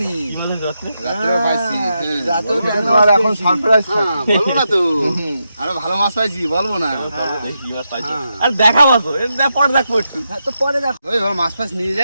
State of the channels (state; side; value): inverted; both; correlation -0.85